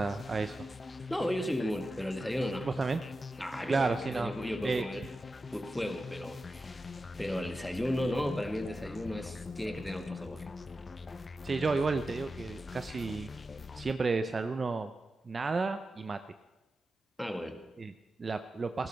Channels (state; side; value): normal; both; correlation 0.91